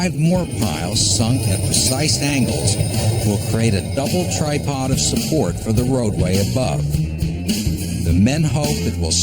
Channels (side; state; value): both; identical; correlation 1.00